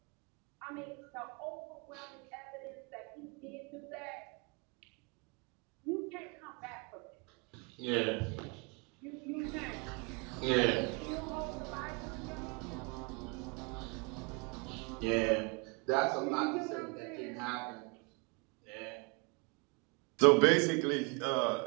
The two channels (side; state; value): left; quieter; 31.0 dB